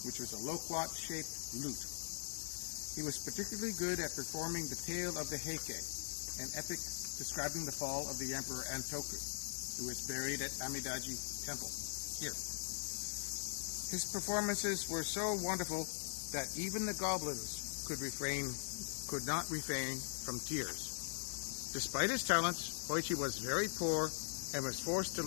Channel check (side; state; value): right; silent; digital silence